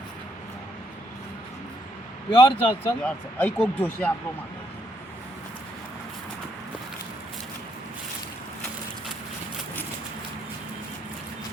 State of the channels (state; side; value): normal; both; correlation 0.73